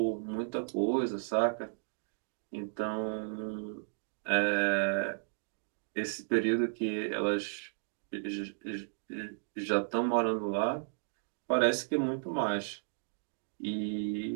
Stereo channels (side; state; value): left; silent; digital silence